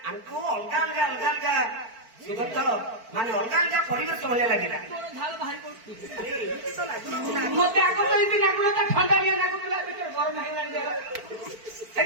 ଆମକୁ ଅଲଗା ଅଲଗା ଅଲଗା ଅଲଗା ସୁଗତ ମାନେ ଅଲଗା ଅଲଗା ପରିବେଶ ଭଳିଆ ଲାଗିଲା। ତୋର ଝାଳ ବାହାରି ପଡୁଛି ଆରେ ଏମିତି ତ ଲାଗୁନଥିଲା। ମତେ ଆଗ ଏମିତି ଲାଗୁନଥିଲା ଥଣ୍ଡାଳିଆ ଲାଗୁଥିଲା ଭିତରେ ଗରମ ହେଇଗଲାଣି ଦେହ।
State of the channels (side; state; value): left; late; 4.5 ms